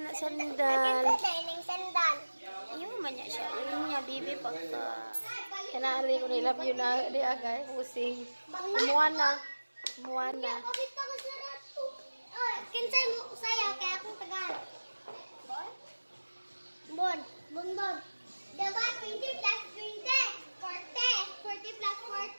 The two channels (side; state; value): both; inverted; correlation -1.00